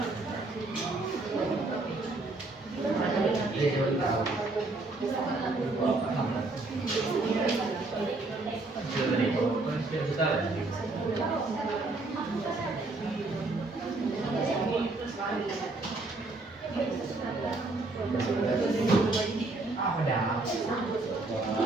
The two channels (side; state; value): left; quieter; 3.2 dB